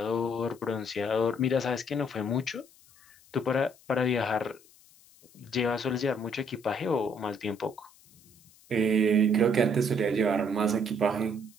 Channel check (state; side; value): noise; left; hiss, 27 dB below the sound